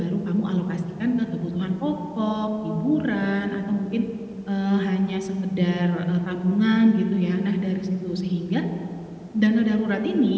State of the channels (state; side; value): identical; both; correlation 1.00